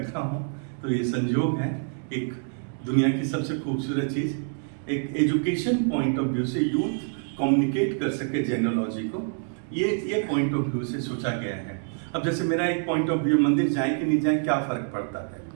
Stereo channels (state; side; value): silent; left; 61 dB below the other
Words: हूँ। तो ये संयोग है, एक दुनिया की सबसे खूबसूरत चीज़, एक एजुकेशन पॉइंट ऑफ व्यू से यूथ कम्युनिकेट कर सके जेनोलॉजी को, ये पॉइंट ऑफ व्यू से सोचा गया है। अब जैसे मेरा एक पॉइंट ऑफ व्यू, मंदिर जाए कि नहीं जाए क्या फर्क पड़ता है,